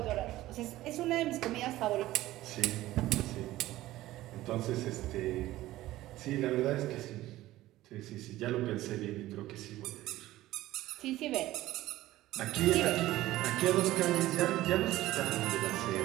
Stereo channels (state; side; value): quieter; left; 16.1 dB